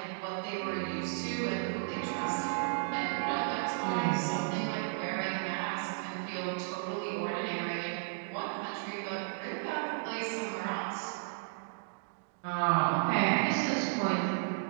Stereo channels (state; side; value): silent; left; digital silence